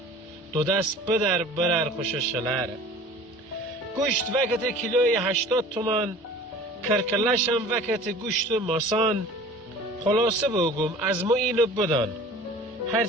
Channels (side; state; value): both; normal; correlation 0.44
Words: دو دست بدر برر خوش شلره. گوشت وقت کیلوی 80 تومان، کرکلشم وقت گوشت ماسان، خلاصه بگم از ما اینو بدان،